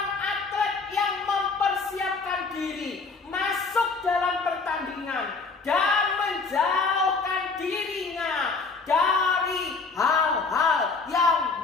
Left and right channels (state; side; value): quieter; right; 4.3 dB